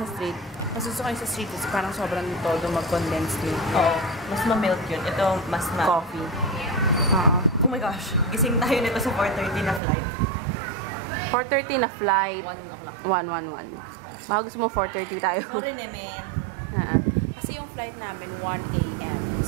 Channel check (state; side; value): drops out; left; at 9.8 s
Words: sa street. Mas gusto ko yung sa street kasi parang sobrang todo mag-condense milk. Oo. Mas ma-milk yun. Ito, mas Coffee. Oo. Oh my gosh. Gising tayo nito sa 4:30 na flight. 4:30 na flight. 1 o'clock. 1:11. Baka gusto mo 4:30 tayo. Sorry, Nemen. Kasi yung flight namin 1 a.m.